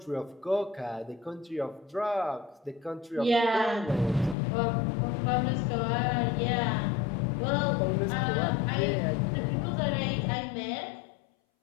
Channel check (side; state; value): right; drops out; at 4.4 s